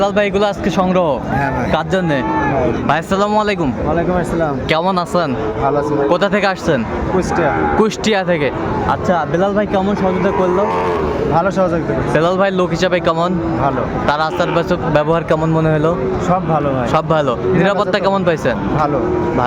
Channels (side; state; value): both; identical; correlation 1.00